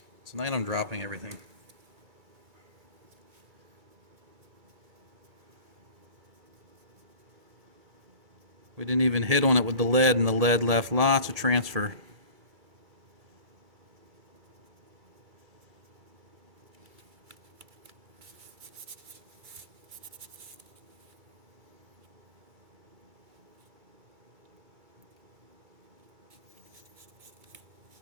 Tonight I'm dropping everything. We didn't even hit on it with the lead, and the lead left lots of transfer.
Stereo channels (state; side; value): late; left; 2.3 ms